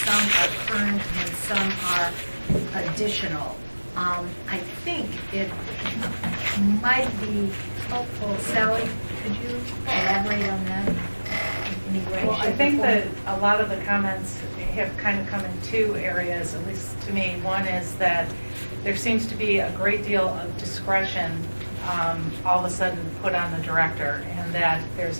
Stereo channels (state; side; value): inverted; both; correlation -1.00